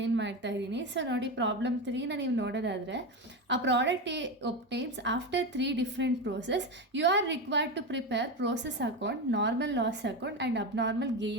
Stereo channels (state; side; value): normal; both; correlation 0.17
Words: ಮಾಡ್ತಾ ಇದ್ದೀನಿ. ಸೊ ನೋಡಿ, ಪ್ರಾಬ್ಲಮ್ 3ನ ನೀವು ನೋಡೋದಾದರೆ, ಆ product obtains after 3 different process, you are required to prepare process account, normal loss account and abnormal